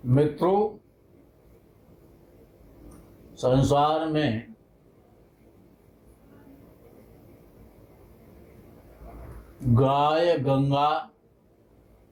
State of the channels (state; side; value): identical; both; correlation 1.00